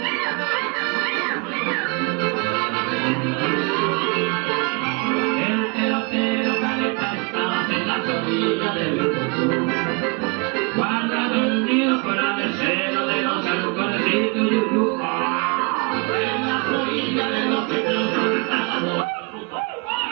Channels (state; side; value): quieter; left; 31.4 dB